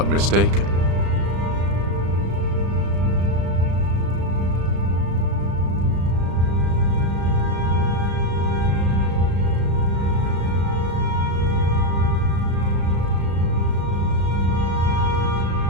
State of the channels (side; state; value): left; late; 35 ms